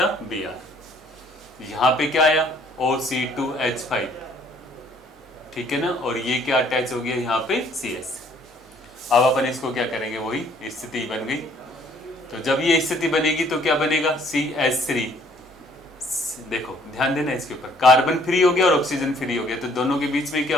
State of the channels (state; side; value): normal; both; correlation 0.61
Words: Br। यहाँ पे क्या आया OC2H5, ठीक है ना, और ये क्या अटैच हो गया यहाँ पे CS। अब अपन इसको क्या करेंगे, वही स्थिति बन गई। तो जब ये स्थिति बनेगी तो क्या बनेगा CH3, देखो ध्यान देना इसके ऊपर, कार्बन फ्री हो गया और ऑक्सीजन फ्री हो गया, तो दोनों के बीच में क्या